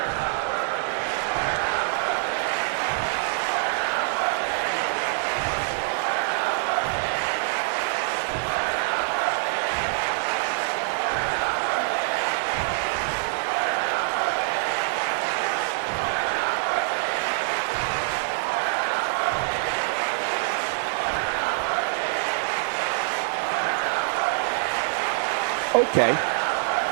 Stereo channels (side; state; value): left; silent; 56 dB below the other